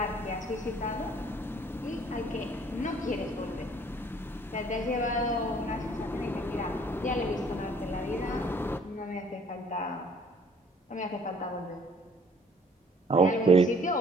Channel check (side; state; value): both; normal; correlation 0.58